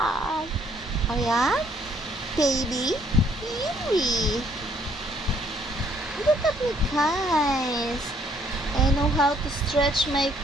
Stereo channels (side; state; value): both; normal; correlation 0.66